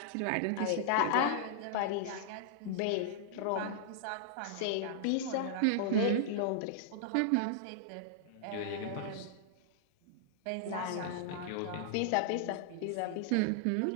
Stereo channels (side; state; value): both; different; correlation -0.01